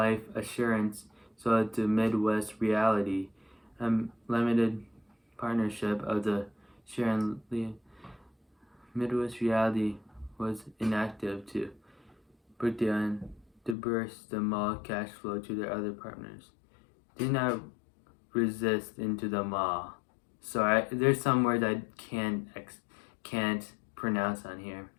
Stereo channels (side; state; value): right; drops out; at 13.8 s